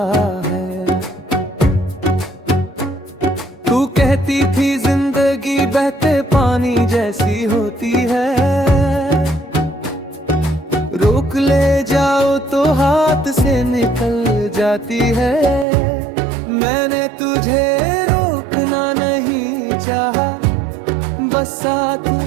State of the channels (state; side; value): drops out; left; at 15.7 s